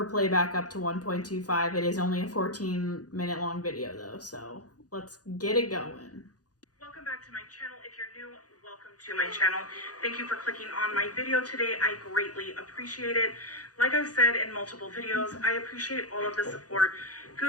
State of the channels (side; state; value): right; late; 0.68 ms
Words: playback up to 1.25. It is only a 14-minute long video though, so let's get it going. Welcome back to my channel. If you're new, welcome to my channel. Thank you for clicking on my video today. I greatly appreciate it. Like I've said in multiple videos, I appreciate all of the support,